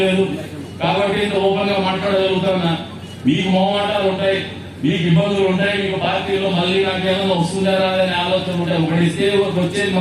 లేదు. కాబట్టి ఇంత ఓపెన్ గా మాట్లాడగలుగుతున్నా. మీకు మొహమాటాలు ఉంటాయి, మీకు ఇబ్బందులు ఉంటాయి, మీకు పార్టీలో మళ్ళీ నాకేమన్నా వస్తుందా రాదని ఆలోచన ఉంటాయి. ఒకటి ఇస్తే వచ్చేది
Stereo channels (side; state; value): both; identical; correlation 1.00